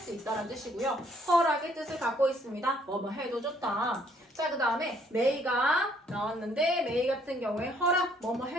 있다라는 뜻이고요. 허락의 뜻을 갖고 있습니다. 뭐뭐 해도 좋다. 자, 그 다음에 may가 나왔는데 may 같은 경우에 허락, 뭐뭐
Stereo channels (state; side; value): normal; both; correlation 0.65